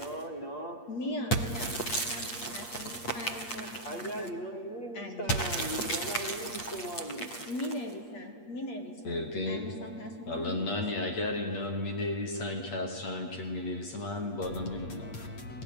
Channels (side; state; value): right; late; 8.5 ms